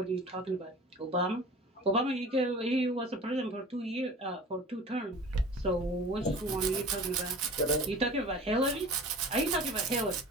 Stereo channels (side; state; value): both; normal; correlation 0.40